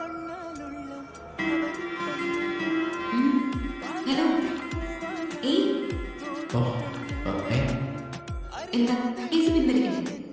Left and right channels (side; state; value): both; identical; correlation 1.00